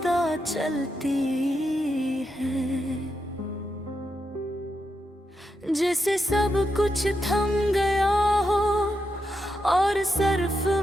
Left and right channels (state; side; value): normal; both; correlation 0.85